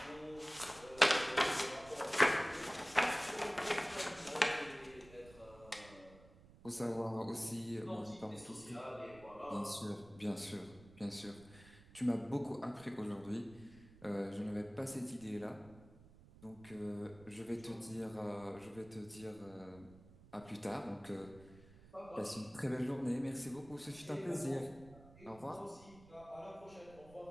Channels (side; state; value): right; noise; rumble, 21 dB below the sound